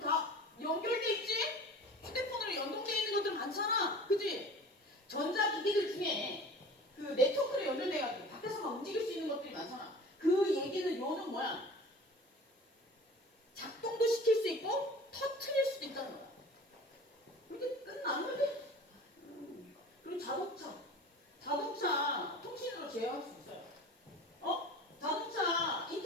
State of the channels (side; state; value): both; normal; correlation 0.41